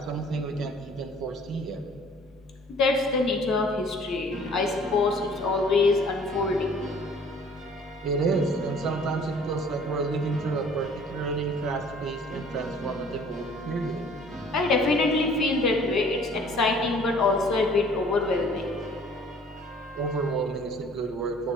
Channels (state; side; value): normal; both; correlation 0.53